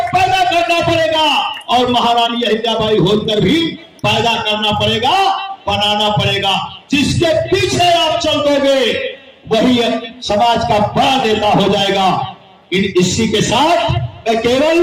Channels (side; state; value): both; identical; correlation 1.00